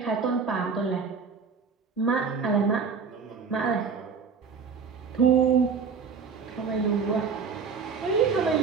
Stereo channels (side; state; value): left; quieter; 5.7 dB